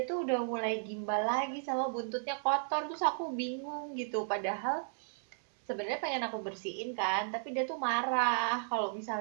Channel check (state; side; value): silent; left; 55 dB below the other